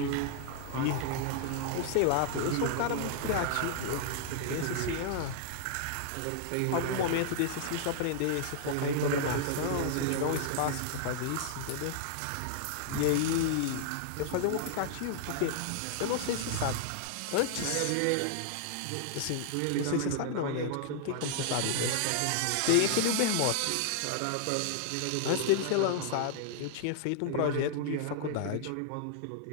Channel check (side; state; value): both; different; correlation -0.01